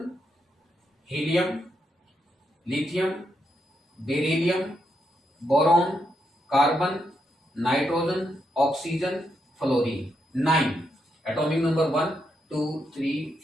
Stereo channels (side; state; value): both; normal; correlation 0.81